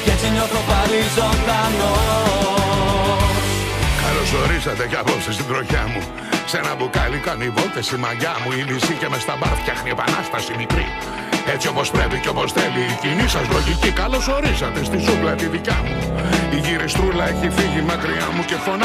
Και έτσι νιώθω πάλι ζωντανός. Καλώς ορίσατε κι απόψε στην τροχιά μου. Σε ένα μπουκάλι κάνει βόλτες η μαγιά μου. Η λύση και μες στα μπαρ φτιάχνει επανάσταση μικρή. Έτσι όπως πρέπει και όπως θέλει η κοινή σας λογική. Καλώς ορίσατε στη ζούγκλα τη δικιά μου. Η γυριστρούλα έχει φύγει μακριά μου και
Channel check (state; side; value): identical; both; correlation 1.00